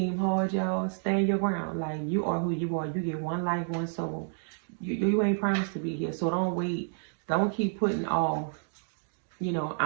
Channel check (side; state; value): left; silent; digital silence